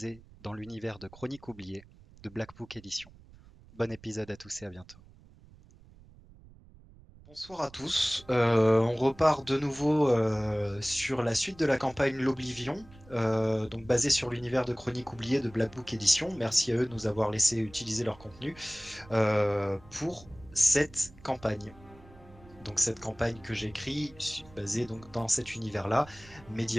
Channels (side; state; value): right; noise; rumble, 23 dB below the sound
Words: dans l'univers de Chroniques oubliées de Black Book Edition. Bon épisode à tous et à bientôt. Bonsoir à tous. On repart de nouveau sur la suite de la campagne L'Oblivion, donc basée sur l'univers de Chroniques oubliées de Black Book Edition. Merci à eux de nous avoir laissé utiliser leur contenu pour cette campagne. Donc cette campagne que j'écris, basée donc dans cet univers-là,